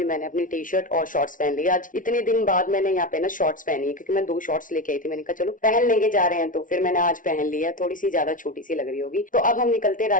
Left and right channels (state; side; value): late; right; 0.38 ms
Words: मैंने अपनी टी शर्ट और शॉर्ट्स पहन ली। आज इतने दिन बाद मैंने यहाँ पे ना शॉर्ट्स पहनी है, क्योंकि मैं 2 शॉर्ट्स लेके आई थी। मैंने कहा चलो पहन लेंगे, जा रहे हैं, तो फिर मैंने आज पहन लिया। थोड़ी सी ज्यादा छोटी सी लग रही होगी। तो अब हम निकलते हैं